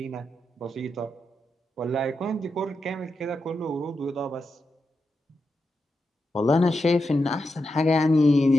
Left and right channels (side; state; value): both; normal; correlation 0.87